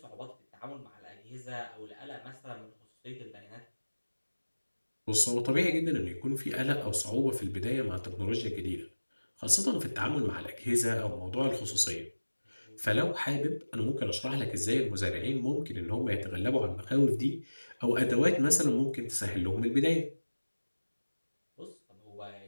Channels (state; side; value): inverted; both; correlation -1.00